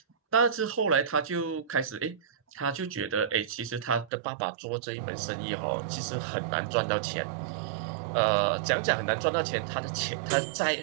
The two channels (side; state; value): left; drops out; at 4.1 s